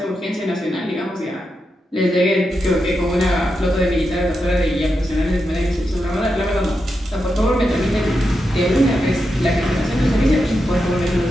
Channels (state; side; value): normal; both; correlation 0.87